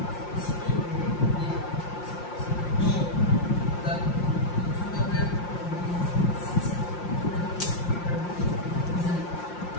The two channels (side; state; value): right; late; 5.7 ms